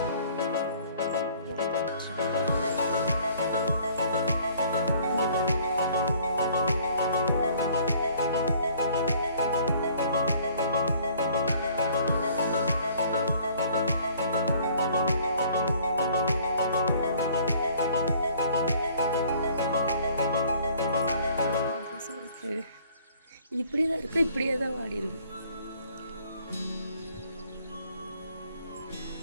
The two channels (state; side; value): inverted; both; correlation -0.57